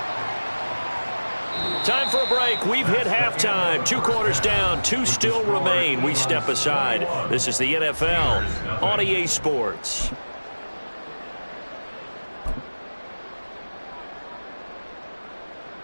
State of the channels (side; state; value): both; inverted; correlation -1.00